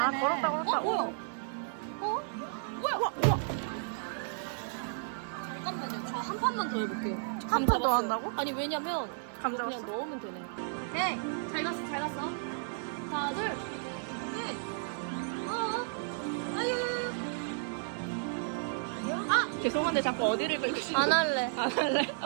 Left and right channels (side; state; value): left; silent; 56 dB below the other